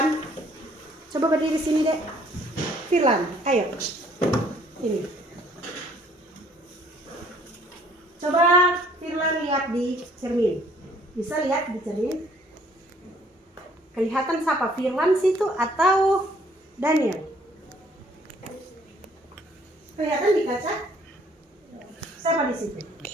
Coba berdiri sini dek. Firlan, ayo. Ini. Coba Firlan lihat di cermin. Bisa lihat di cermin? Kelihatan siapa? Firlan situ atau Daniel? Kelihatan di kaca? Siapa di situ?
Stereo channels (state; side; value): normal; both; correlation 0.61